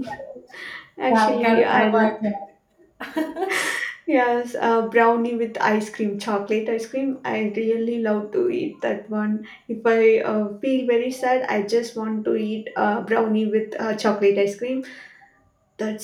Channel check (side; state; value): both; identical; correlation 1.00